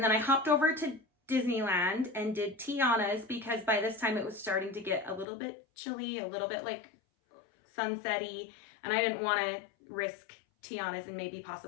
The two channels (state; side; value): drops out; right; at 5.2 s